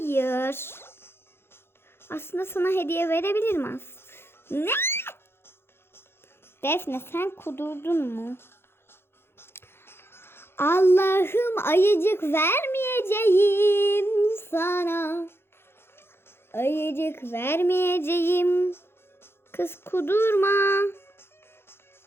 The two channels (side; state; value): right; late; 0.11 ms